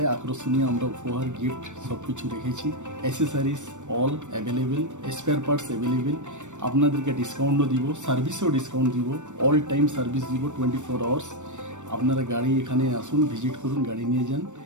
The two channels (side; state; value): left; late; 0.85 ms